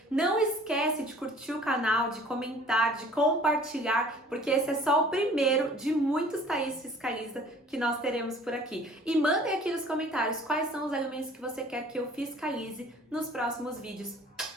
Não esquece de curtir o canal, de comentar, de compartilhar, porque esse é só o primeiro de muitos Thaís Fiscaliza que nós teremos por aqui. E mandem aqui nos comentários quais são os alimentos que você quer que eu fiscalize nos próximos vídeos.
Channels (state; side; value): normal; both; correlation 0.50